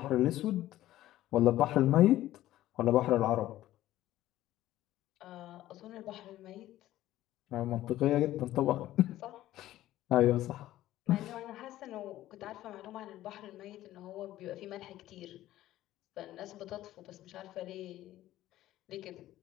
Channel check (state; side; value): quieter; right; 14.5 dB